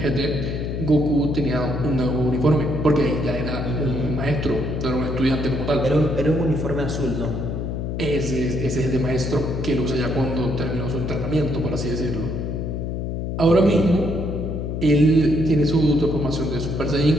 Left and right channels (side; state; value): left; noise; hum, 3 dB below the sound